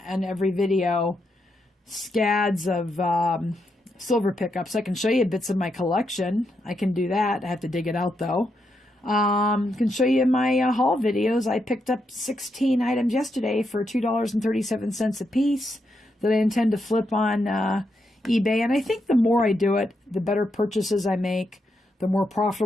every video scads of silver pickups. I can show you bits of my collection. I can do that. I have to dig it out though. Can show you my haul videos. I picked up 16 items yesterday for $2.37 a piece that I intend to flip on eBay. And I think the more I do it, the better purchases I make, the more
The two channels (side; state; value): both; normal; correlation 0.82